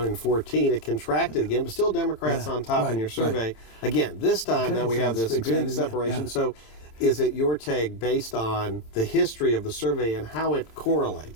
In 2014, it contracted again, but still Democrats on top in your survey. Again, this time, now we have this big separation. So is it your take, based on the history of the survey and how it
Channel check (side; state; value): right; late; 30 ms